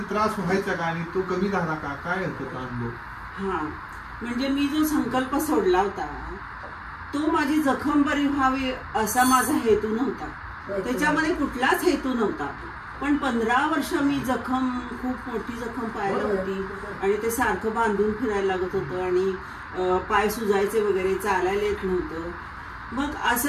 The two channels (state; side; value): identical; both; correlation 1.00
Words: त्रास व्हायचा का आणि तो कमी झाला का, काय होतं तो अनुभव? म्हणजे मी जो संकल्प सोडला होता तो माझी जखम बरी व्हावी असा माझा हेतू नव्हता, त्याच्यामध्ये कुठलाच हेतू नव्हता. पण 15 वर्ष मी खूप मोठी जखम पायाला होती आणि ते सारखं बांधून फिरायला लागत होतं आणि पाय सुजायचे वगैरे, चालायला येत नव्हतं. मग